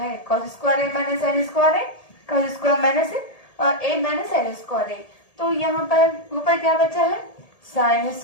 cos square A minus sine square A, cos square minus A minus sine square ए, तो यहाँ पर ऊपर क्या बचा है, साइन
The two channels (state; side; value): late; right; 1.8 ms